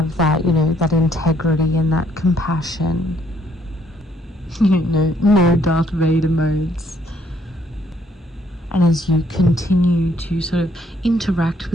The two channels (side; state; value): both; normal; correlation 0.67